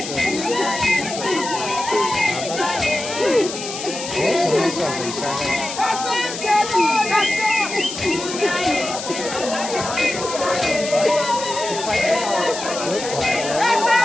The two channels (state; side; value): noise; left; hiss, 8 dB below the sound